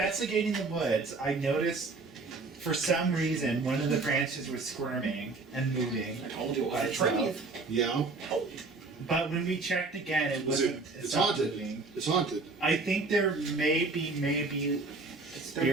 the woods, I noticed, for some reason, one of the branches was squirming and moving. I told you it by was a tree. itself. Yeah, But when we checked again, it Was it- wasn't. it's stopped haunted. moving. it's haunted. I think there may be a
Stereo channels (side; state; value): left; quieter; 3.8 dB